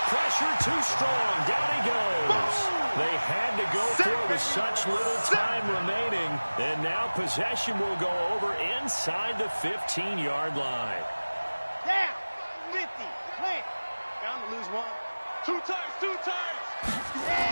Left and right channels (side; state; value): both; inverted; correlation -1.00